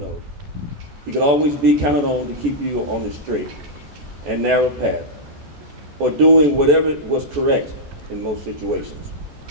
he could always be counted on to keep you on the straight and narrow path, or doing whatever was correct in most situations.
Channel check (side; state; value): left; late; 14 ms